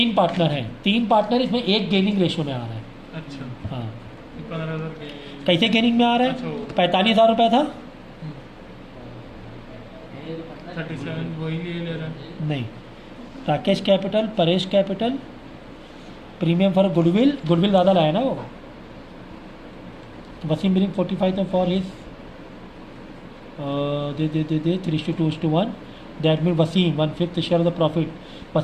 पार्टनर हैं। 3 पार्टनर, इसमें एक गेनिंग रेशियो में आ रहा है। अच्छा, हाँ, 15,000 के कैसे गेनिंग में आ रहा है? अच्छा। 45,000 रुपये था, 37 वही ले रहा है। नहीं, Rakesh capital, Paresh capital, premium for goodwill, goodwill ज़्यादा लाया ना वो, तो वसीम बिलिंग 45,000 फॉर हिज दे 3:2:1, that mean Wasim 1/5 share of the profit,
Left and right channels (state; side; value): identical; both; correlation 1.00